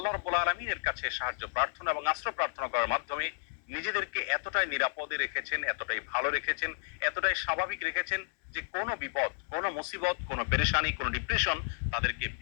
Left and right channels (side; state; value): right; silent; 56 dB below the other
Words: রাব্বুল আলামিনের কাছে সাহায্য প্রার্থনা এবং আশ্রয় প্রার্থনা করার মাধ্যমে নিজেদেরকে এতটাই নিরাপদে রেখেছেন, এতটাই ভালো রেখেছেন, এতটাই স্বাভাবিক রেখেছেন যে কোনো বিপদ, কোনো মুসিবত, কোনো পেরেশানি, কোনো ডিপ্রেশন তাদেরকে